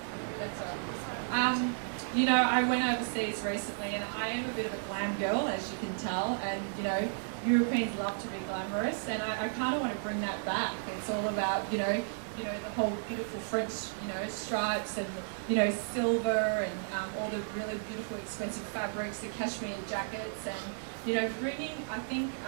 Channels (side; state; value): left; silent; digital silence